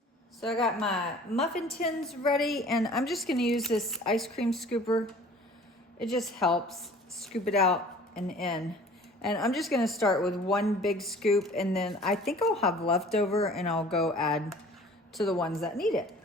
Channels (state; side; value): normal; both; correlation 0.48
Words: So I got my muffin tins ready, and I'm just gonna use this ice cream scooper. It just helps scoop it out and in. And I'm just gonna start with 1 big scoop, and then I think I'll have leftover and I'll go add to the ones that need it.